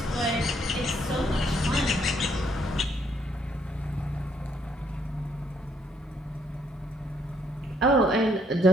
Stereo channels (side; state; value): both; normal; correlation 0.70